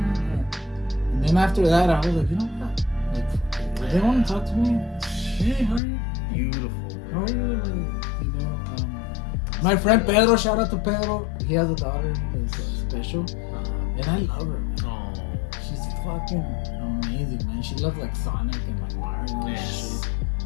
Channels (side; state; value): right; drops out; at 5.8 s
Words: And then after that, I was like, you know what? Like, if they want to talk to me, hey, how are you? Beautiful. How are you? man. Like, you know, my friend Pedro, shout out to Pedro. He has a daughter who's special, and I love her. Man. Oh, She's fucking amazing, man. She loves like Sonic and like Mario and Yes. shit.